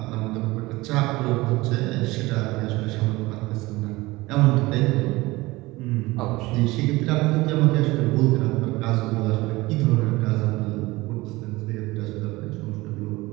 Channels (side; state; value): left; quieter; 20.7 dB